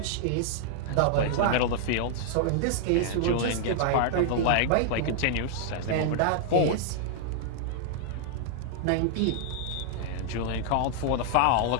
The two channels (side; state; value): both; different; correlation -0.01